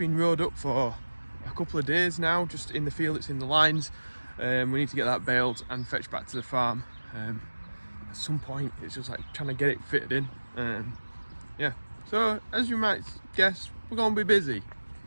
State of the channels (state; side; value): inverted; both; correlation -1.00